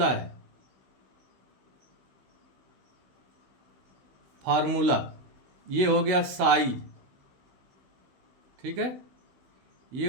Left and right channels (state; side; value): late; left; 16 ms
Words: है, फार्मूला ये हो गया साइज, ठीक है, ये